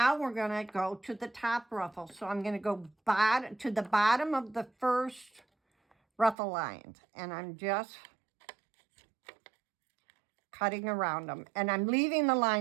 we're going to go to the top ruffle. So I'm going to go to the bottom of the first ruffle lines, and I'm just cutting around them. And I'm leaving the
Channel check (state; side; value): drops out; left; at 6.4 s